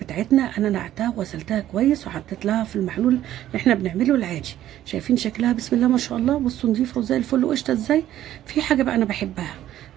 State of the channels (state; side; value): quieter; left; 12.6 dB